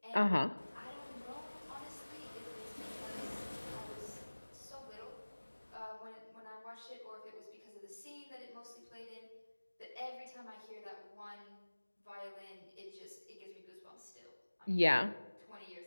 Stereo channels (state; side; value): inverted; both; correlation -1.00